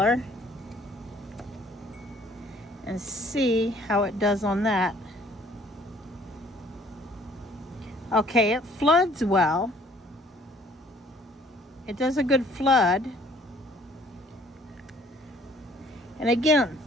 and see how it does on that. Okay, it floods well. It does a good flood. And again,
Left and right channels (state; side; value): normal; both; correlation 0.58